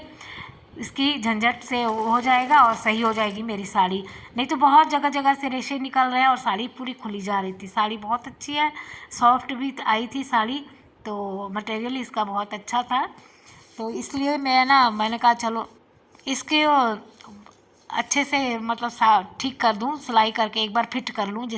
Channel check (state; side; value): identical; both; correlation 1.00